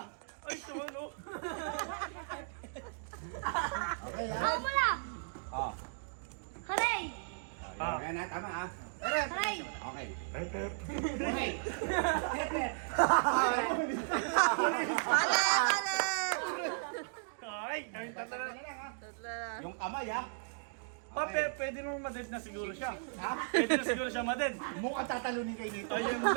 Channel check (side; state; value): left; silent; digital silence